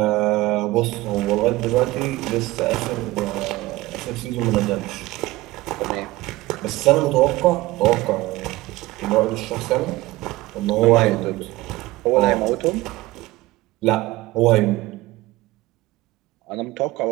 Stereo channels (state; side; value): quieter; left; 18.7 dB